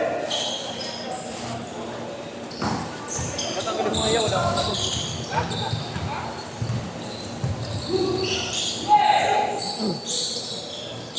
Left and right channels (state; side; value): identical; both; correlation 1.00